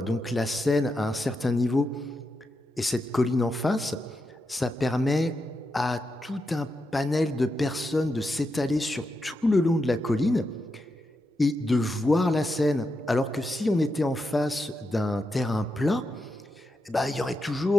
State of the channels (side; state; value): both; normal; correlation 0.86